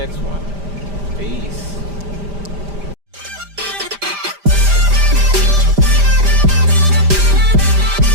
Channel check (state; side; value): late; left; 5.0 ms